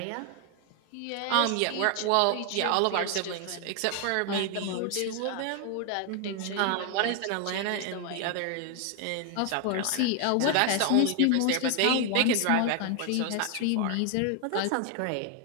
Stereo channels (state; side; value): different; both; correlation 0.00